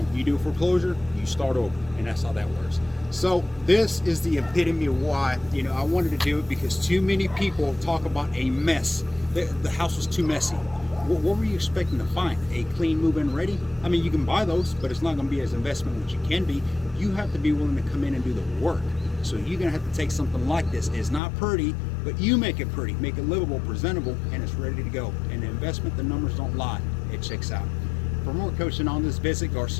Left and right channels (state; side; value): drops out; right; at 21.2 s